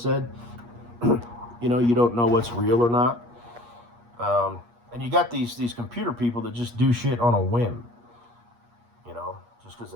you don't know what's real or not. And you got these computer people that just do shit on a whim, just because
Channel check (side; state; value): left; late; 8.4 ms